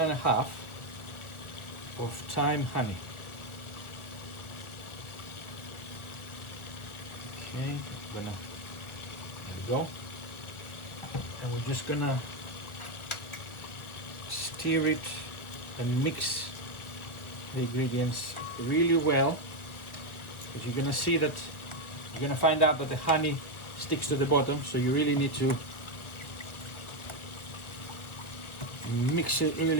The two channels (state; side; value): late; right; 1.2 ms